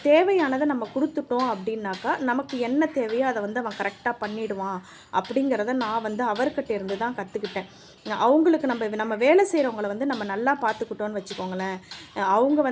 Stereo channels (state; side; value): identical; both; correlation 1.00